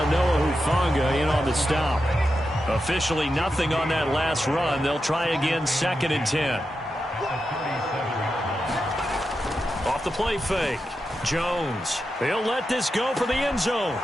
Hufanga in on the stop. Officially nothing on that last run. They'll try again, 2nd and 10. Off the play fake. Jones. He'll let this go for the end zone.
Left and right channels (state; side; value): normal; both; correlation 0.88